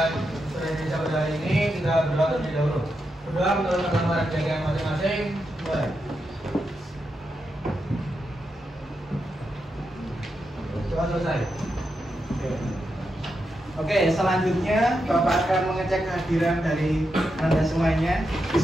Bahasa Indonesia pada hari ini, kita berdoa terlebih dahulu. Berdoa menurut agama dan keyakinan masing-masing. Mulai. Doa selesai. Oke, selanjutnya Bapak akan mengecek kehadiran dari Anda semuanya. Di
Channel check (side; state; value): both; normal; correlation 0.86